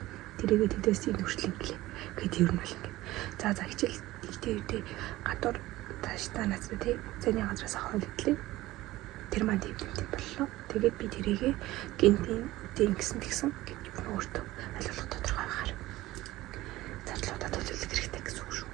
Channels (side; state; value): left; quieter; 17.4 dB